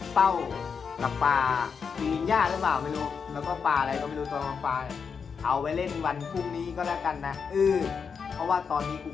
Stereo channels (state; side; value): quieter; right; 6.1 dB